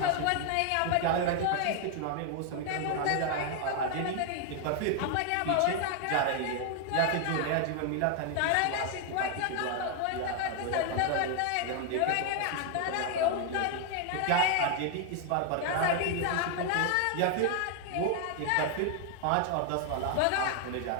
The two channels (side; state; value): both; different; correlation 0.00